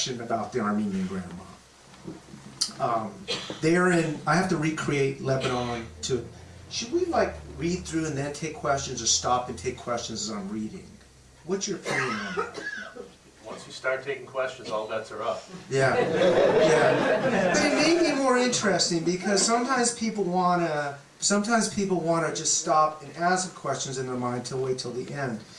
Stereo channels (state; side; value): identical; both; correlation 1.00